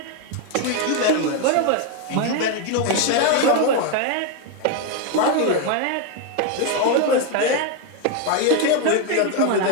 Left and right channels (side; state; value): both; different; correlation 0.02